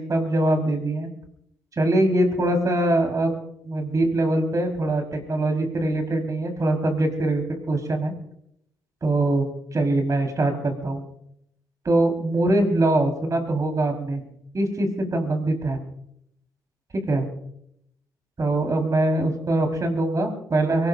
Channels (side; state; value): both; normal; correlation 0.83